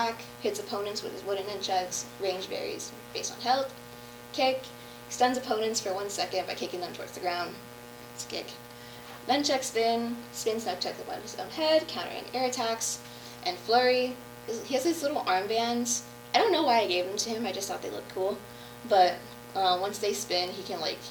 hits opponents with his wooden nunchucks, range varies based on health. Kick, stuns opponents for 1 second by kicking them towards the ground. It's a kick. Nunchuck spin, spins nunchucks above his own head, countering air attacks. And Flurry, he has these little armbands. I don't know why I gave them to him, I just thought they looked cool. But once they spin, he can, like,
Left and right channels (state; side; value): identical; both; correlation 1.00